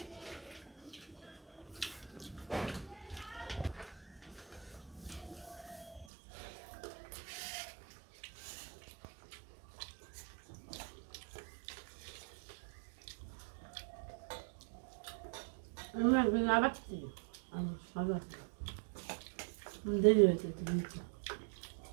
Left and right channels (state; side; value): drops out; left; at 6.1 s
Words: আবার দেরি হয়েছে